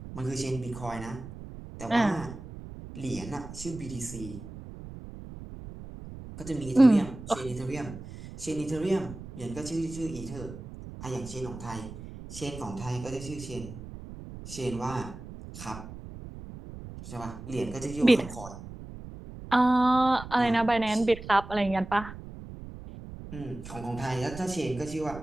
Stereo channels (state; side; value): noise; right; rumble, 13 dB below the sound